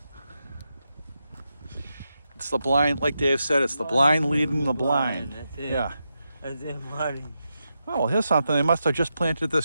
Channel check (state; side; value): inverted; both; correlation -0.87